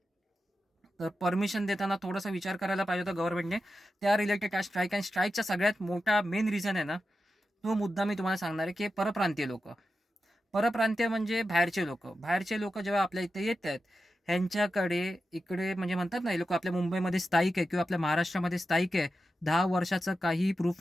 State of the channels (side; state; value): both; normal; correlation 0.91